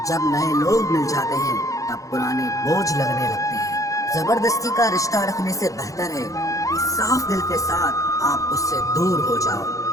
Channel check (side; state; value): right; late; 0.16 ms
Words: जब नए लोग मिल जाते हैं तब पुराने बोझ लगने लगते हैं। जबरदस्ती का रिश्ता रखने से बेहतर है कि साफ दिल के साथ आप उससे दूर हो जाओ।